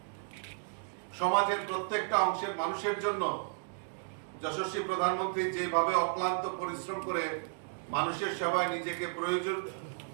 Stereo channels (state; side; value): silent; left; digital silence